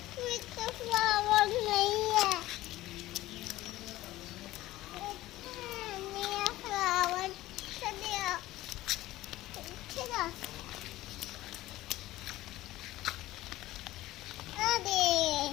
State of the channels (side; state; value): right; quieter; 16.5 dB